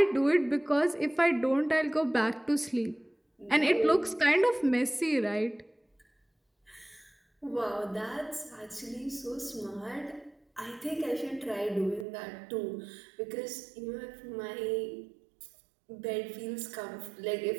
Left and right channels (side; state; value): left; drops out; at 12.1 s